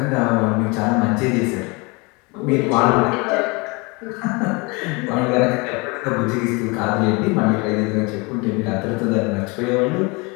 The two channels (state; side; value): quieter; right; 27.6 dB